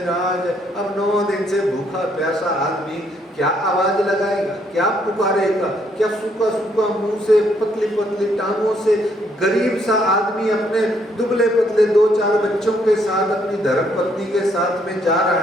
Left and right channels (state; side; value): normal; both; correlation 0.70